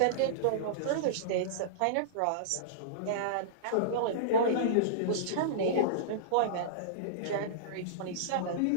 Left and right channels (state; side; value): different; both; correlation -0.03